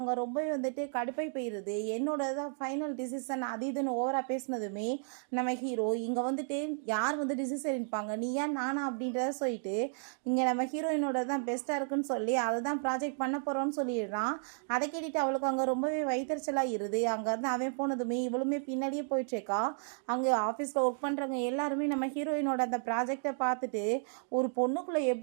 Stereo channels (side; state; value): left; silent; 56 dB below the other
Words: ரொம்பவே வந்துட்டு கடுப்பை போயிருது. என்னோட தான் ஃபைனல் டிசிஷன் அது இதுன்னு ஓவரா பேசினதுமே நம்ம ஹீரோ இங்கே வந்துட்டு யார் வந்து டிசிஷன் எடுப்பாங்க, நீ ஏன் நானா அப்படின்றத சொல்லிட்டு இங்கே நம்ம ஹீரோயினோட தான் பெஸ்ட்டாக இருக்குன்னு சொல்லி அதை தான் ப்ராஜெக்ட் பண்ண போகிறோன்னு சொல்லிடுறான். அதை கேட்டுட்டு அவளுக்கு அங்கே ரொம்பவே வயிற்றுச்சலாக இருது. அங்கேருந்து அவன் போனதுமே இவளுமே பின்னாடியே போயிட்டுருக்கா. அங்கே ஆஃபீஸில் ஒர்க் பண்ணுறவங்க எல்லாருமே நம்ம ஹீரோயினோட அந்த ப்ராஜெக்டை பார்த்துட்டு, ஒரு பொண்ணுக்குள்ளே